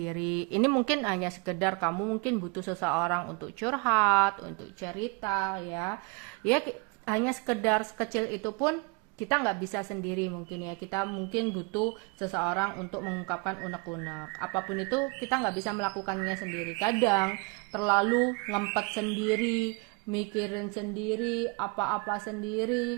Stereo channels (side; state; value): left; quieter; 30.8 dB